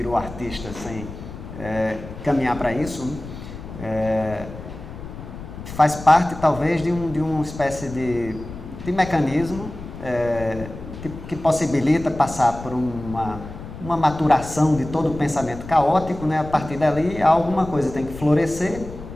artista sem caminhar para isso, né, faz parte talvez de uma espécie de mecanismo que possibilita passar por uma maturação de todo o pensamento caótico, né? A partir dali alguma coisa tem que florescer,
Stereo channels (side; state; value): left; noise; rumble, 12 dB below the sound